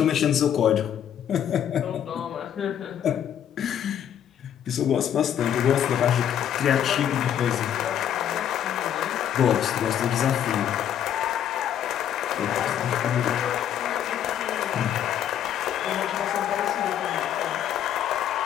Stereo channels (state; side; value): quieter; right; 9.9 dB